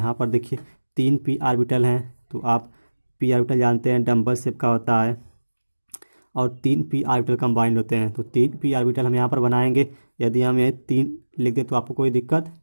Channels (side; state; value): both; inverted; correlation -1.00